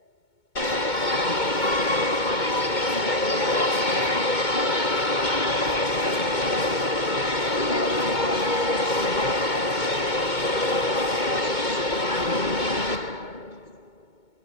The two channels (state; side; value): late; right; 2.2 ms